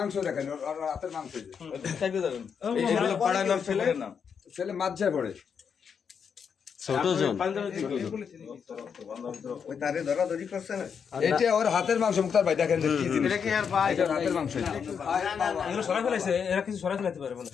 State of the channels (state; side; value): quieter; right; 6.8 dB